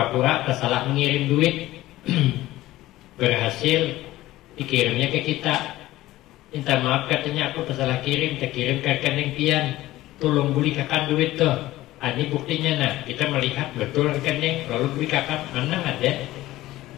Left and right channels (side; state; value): right; quieter; 16.4 dB